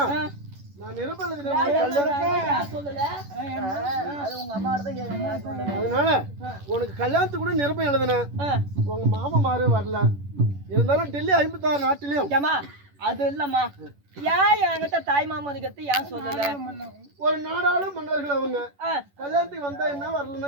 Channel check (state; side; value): late; left; 11 ms